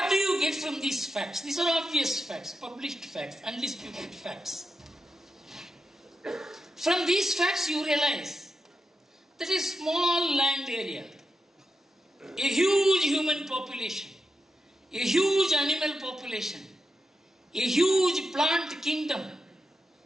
do you get from these facts? These are obvious facts, published facts, undisputed facts. From these facts you realize that a small land area, a huge human population, a huge animal population, a huge plant kingdom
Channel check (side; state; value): both; normal; correlation 0.87